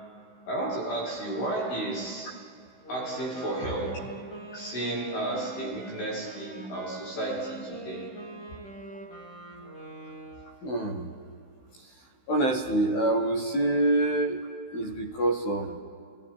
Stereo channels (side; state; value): right; late; 16 ms